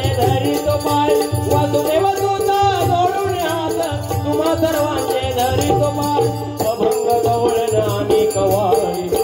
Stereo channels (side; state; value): both; identical; correlation 1.00